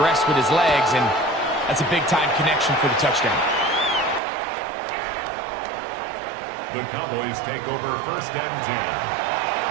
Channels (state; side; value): drops out; left; at 4.2 s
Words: with his legs, and that's a big-time connection for the touchdown. The Cowboys take over 1st and 10